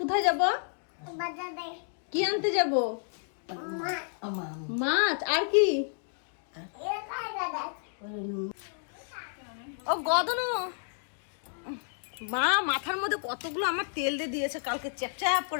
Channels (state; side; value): silent; right; digital silence